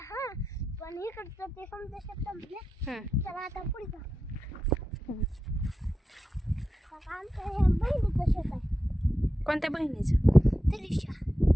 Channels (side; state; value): both; normal; correlation 0.90